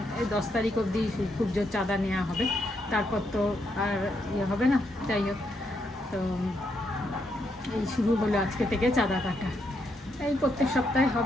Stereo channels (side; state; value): both; normal; correlation 0.78